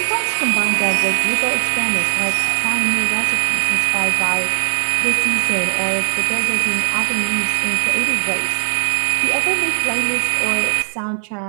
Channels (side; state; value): left; silent; digital silence